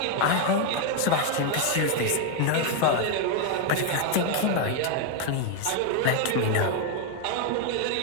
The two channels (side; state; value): both; different; correlation 0.00